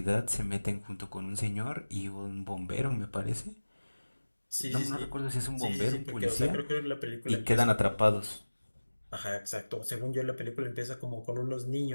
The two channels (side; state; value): both; inverted; correlation -1.00